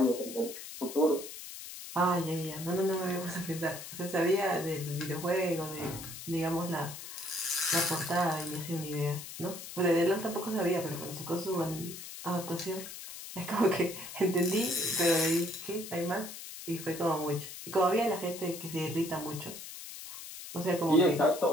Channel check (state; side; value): noise; left; hiss, 11 dB below the sound